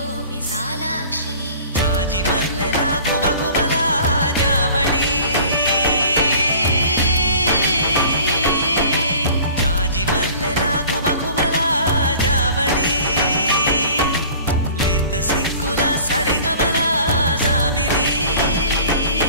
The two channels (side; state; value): both; inverted; correlation -0.46